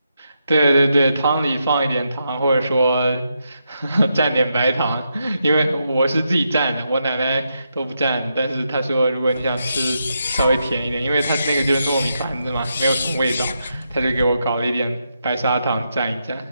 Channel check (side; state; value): both; inverted; correlation -0.83